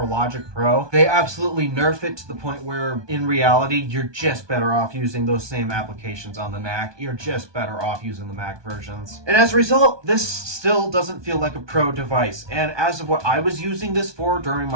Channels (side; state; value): left; late; 1.2 ms